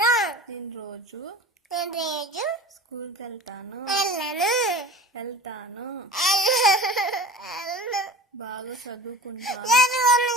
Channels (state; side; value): normal; both; correlation 0.36